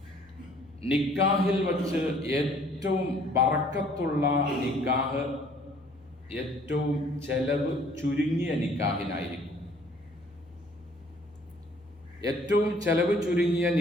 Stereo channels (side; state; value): both; normal; correlation 0.58